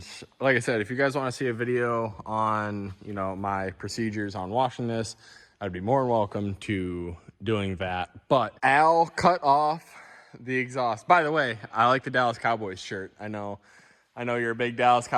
like I said, if you guys want to see a video on, you know, my procedures on washing this, I'd be more than welcome to doing that. But Al cut off the exhaust. By the way, I like the Dallas Cowboys shirt. I know you're a big Dallas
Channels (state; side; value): identical; both; correlation 1.00